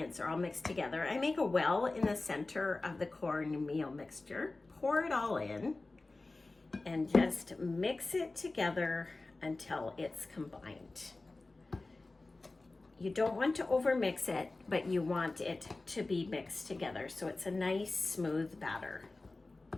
are all mixed together, I make a well in the center of the cornmeal mixture, pour it all in, and just mix it together until it's combined. You don't want to overmix it, but you want it to be mixed together so it's a nice smooth batter.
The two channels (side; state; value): right; quieter; 3.2 dB